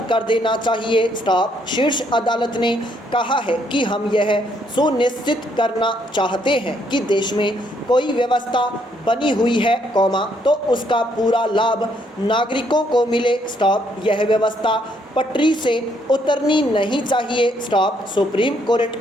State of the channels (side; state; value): both; normal; correlation 0.71